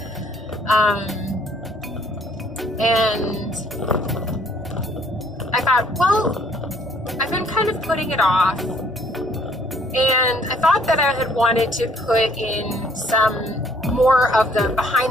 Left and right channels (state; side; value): normal; both; correlation 0.62